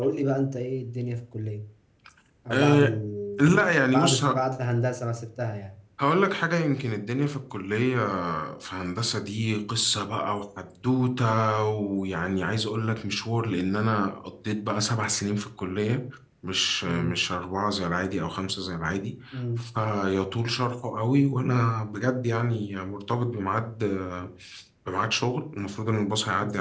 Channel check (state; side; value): identical; both; correlation 1.00